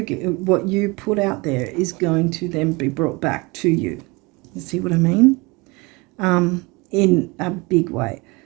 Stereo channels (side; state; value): left; quieter; 25.9 dB